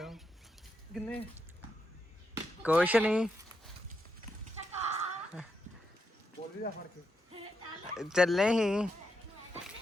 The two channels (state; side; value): normal; both; correlation 0.83